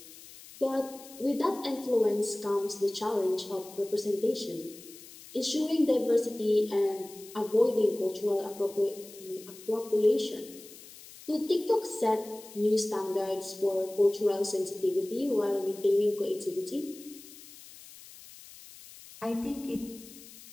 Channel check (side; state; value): left; noise; hiss, 18 dB below the sound